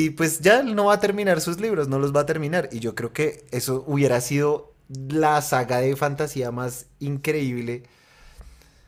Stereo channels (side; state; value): both; identical; correlation 1.00